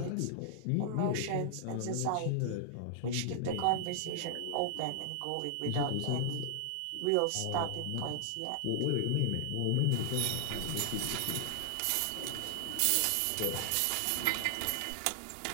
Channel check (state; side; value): different; both; correlation -0.01